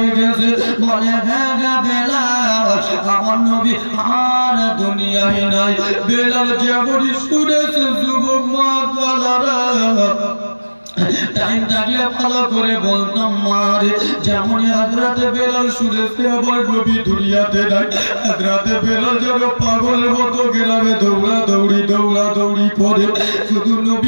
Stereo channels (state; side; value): inverted; both; correlation -1.00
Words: গেছে। বলে হ্যাঁ গা বেলাল, আমার নবী আর দুনিয়ায় নাই। বেলাল যেমনই শুনেছে যুবক মা কালারা, টাইম থাকলে ভালো করে বলতাম মারে, যেমন হযরত বেলাল শুনেছে আমার নবী দুনিয়াতে নাই, হযরত বেলাল যেন পাগল মতো গ্রামে দৌড়াদৌড়ি দৌড়াদৌড়ি করে, শুধু